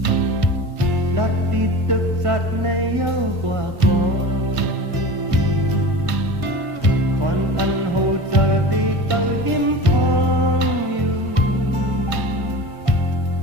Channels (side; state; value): left; late; 1.5 ms